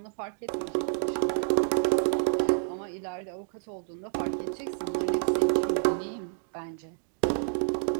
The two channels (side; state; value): left; silent; digital silence